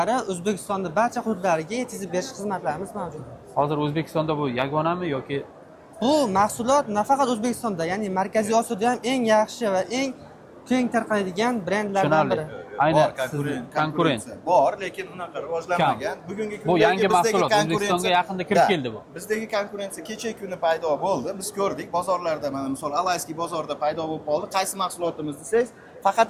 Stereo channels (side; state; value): both; identical; correlation 1.00